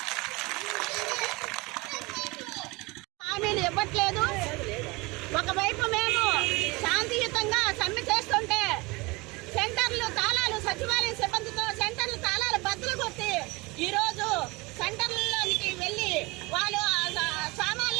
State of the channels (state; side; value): quieter; left; 24.4 dB